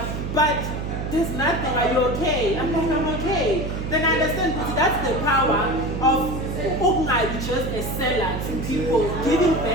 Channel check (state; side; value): noise; right; hum, 4 dB below the sound